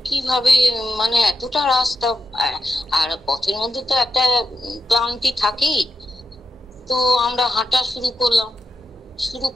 কিভাবে মানে এতটা রাস্তা, আর পথের মধ্যে তো একটা ক্লান্তি থাকেই। তো আমরা হাঁটা শুরু করলাম, শুরু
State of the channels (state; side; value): normal; both; correlation 0.86